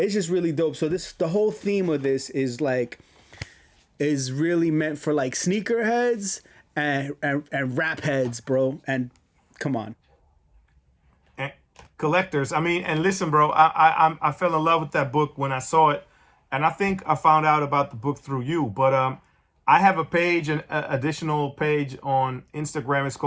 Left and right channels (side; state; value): both; identical; correlation 1.00